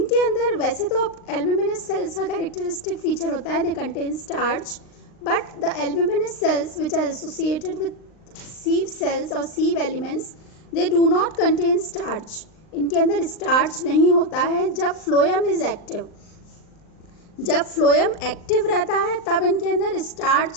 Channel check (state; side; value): late; right; 39 ms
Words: अंदर वैसे तो एल्ब्यूमिनस सेल्स का कैरेक्टरिस्टिक फीचर होता है they contain starch, but the albuminous cells which are associated with sieve cells और sieve elements they do not contain starch. इनके अंदर स्टार्च नहीं होता है जब फ्लोएम इज एक्टिव। जब फ्लोएम एक्टिव रहता है तब इनके अंदर स्टार्च